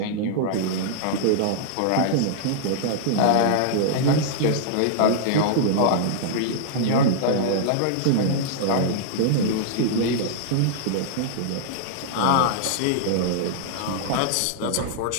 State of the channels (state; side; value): different; both; correlation -0.01